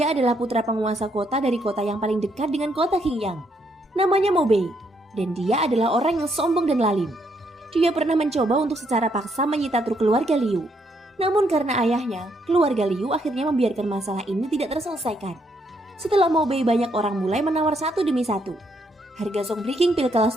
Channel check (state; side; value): normal; both; correlation 0.74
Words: adalah putra penguasa kota dari kota yang paling dekat dengan kota Qingyang. Namanya Mo Bei, dan dia adalah orang yang sombong dan lalim. Dia pernah mencoba untuk secara paksa menyita truk keluarga Liu. Namun karena ayahnya, keluarga Liu akhirnya membiarkan masalah ini tidak terselesaikan. Setelah Mo Bei, banyak orang mulai menawar satu demi satu. Harga zong breaking pil